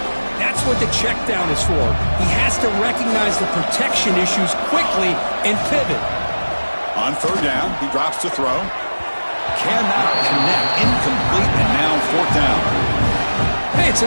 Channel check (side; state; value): both; inverted; correlation -1.00